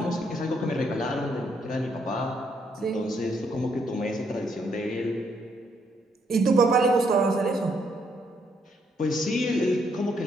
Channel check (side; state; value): both; normal; correlation 0.73